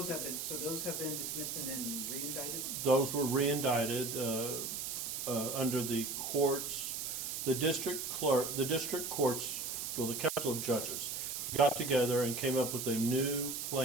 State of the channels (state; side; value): noise; right; hiss, 4 dB below the sound